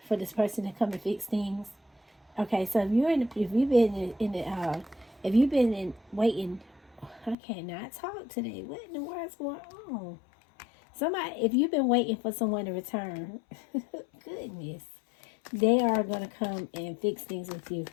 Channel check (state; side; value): drops out; right; at 7.4 s